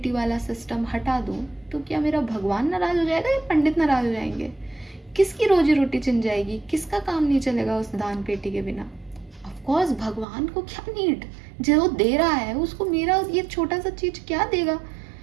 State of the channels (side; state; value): left; drops out; at 10.2 s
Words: वाला सिस्टम हटा दूं तो क्या मेरा भगवान नाराज हो जाएगा या पंडित नाराज हो जाएंगे? किसकी रोजी रोटी छिन जाएगी? किसका काम नहीं चलेगा उस दान पेटी के बिना? ऑफ कोर्स भगवान को क्या नीड, जो दे रहा है उसको मेरा ये छोटा सा चीज क्या देगा?